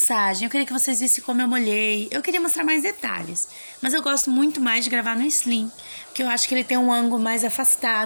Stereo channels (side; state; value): both; inverted; correlation -1.00